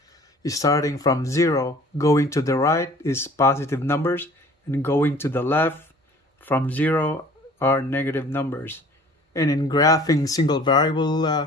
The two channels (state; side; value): normal; both; correlation 0.50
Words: starting from 0. Going to the right is positive numbers, and going to the left from 0 are negative numbers. And in graphing single